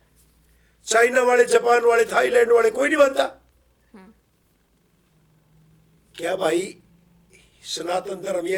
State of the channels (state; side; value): identical; both; correlation 1.00